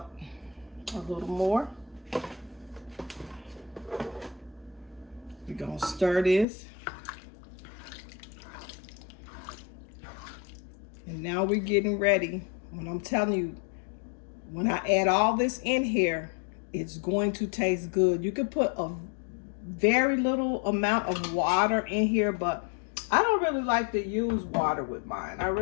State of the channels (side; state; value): right; drops out; at 6.5 s